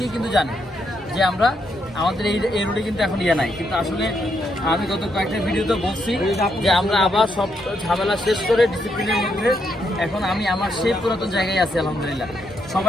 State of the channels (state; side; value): normal; both; correlation 0.78